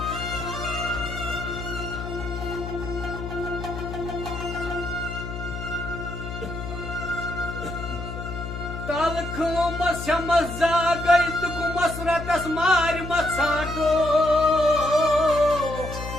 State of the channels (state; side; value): noise; left; hum, 8 dB below the sound